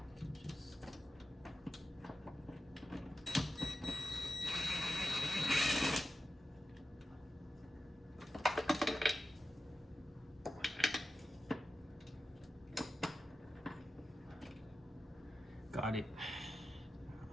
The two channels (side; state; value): both; normal; correlation 0.91